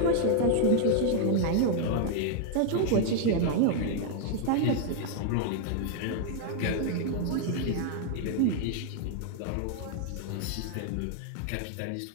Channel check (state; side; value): different; both; correlation 0.00